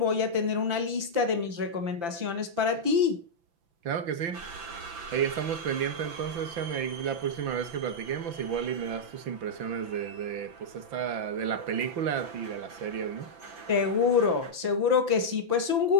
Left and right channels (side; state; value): left; late; 5.9 ms